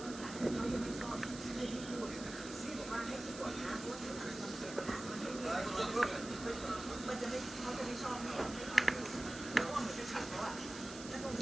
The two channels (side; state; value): right; noise; hiss, 12 dB below the sound